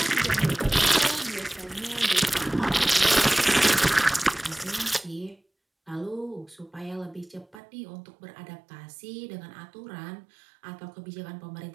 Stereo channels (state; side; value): drops out; left; at 7.6 s